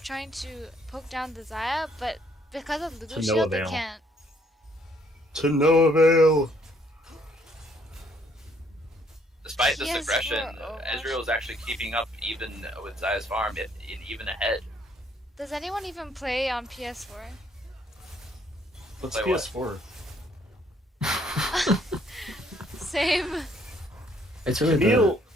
trying to poke down the Zaya, but because of To Lulu no shield, they avail. can't. To no avail. Despite this PS4 aggression, Overwatch. Ezreal is actually keeping up even with Zaya's farm, even ahead. Does anyone even play on PS4? What's Play what? PS4? Same. It's really Camille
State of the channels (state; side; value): normal; both; correlation 0.66